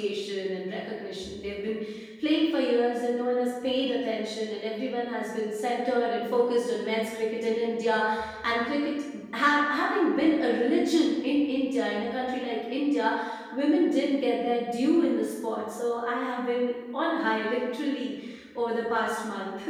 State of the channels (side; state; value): both; identical; correlation 1.00